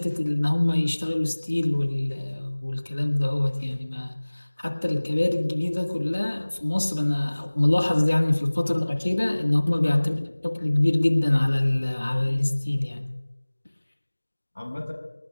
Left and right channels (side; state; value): both; inverted; correlation -1.00